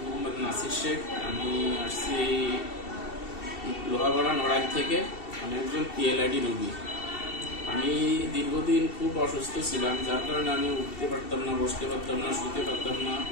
মোহাম্মদ নাসির শেখ। আমি আসছি লোহাগড়া নড়াইল থেকে। আমি একজন পিএলআইডি রোগী। আমি দীর্ঘদিন খুব অসুস্থ ছিলাম, যার কারণে আমি উঠতে পারতাম না, বসতে পারতাম না, শুতে পারতাম না,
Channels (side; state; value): right; late; 2.7 ms